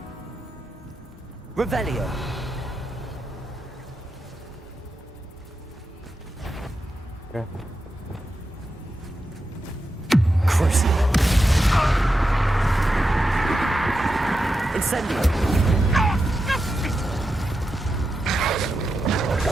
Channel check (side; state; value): both; normal; correlation 0.89